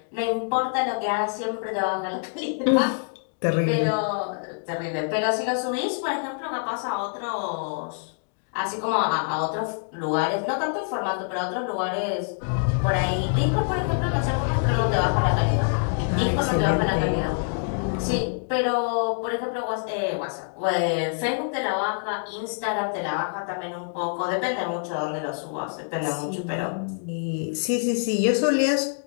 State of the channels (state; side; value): silent; right; digital silence